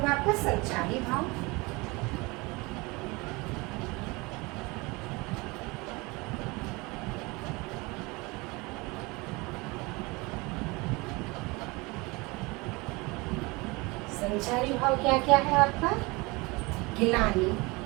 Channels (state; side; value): quieter; left; 25.0 dB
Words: आपका? संचारी भाव। संचारी भाव क्या क्या है आपका? गिलानी,